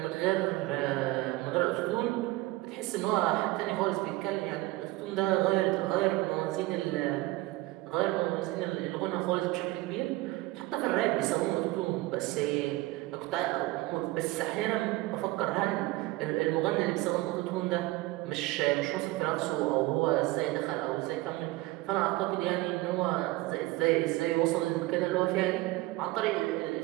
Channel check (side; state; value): left; quieter; 19.2 dB